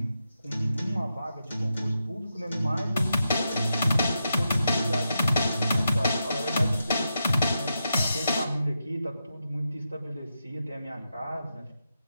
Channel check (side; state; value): both; inverted; correlation -0.86